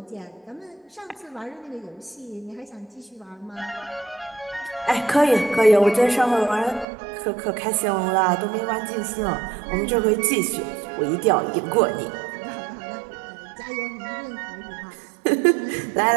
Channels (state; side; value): drops out; left; at 6.9 s